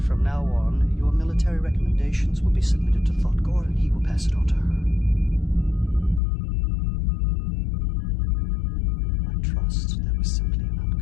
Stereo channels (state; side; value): drops out; right; at 6.2 s